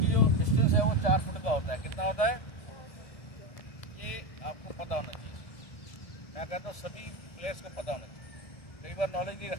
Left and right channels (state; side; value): late; right; 1.7 ms